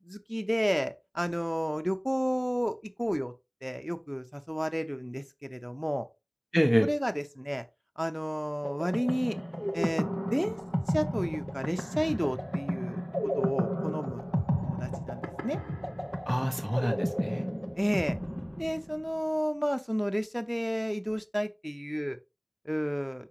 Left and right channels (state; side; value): identical; both; correlation 1.00